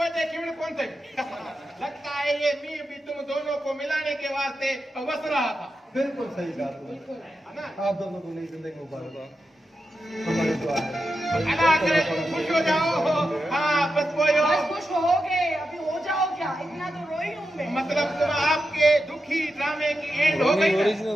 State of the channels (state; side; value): normal; both; correlation 0.88